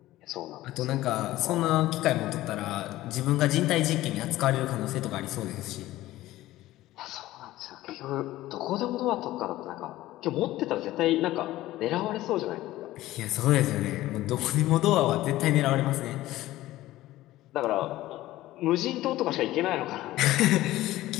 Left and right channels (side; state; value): right; quieter; 16.1 dB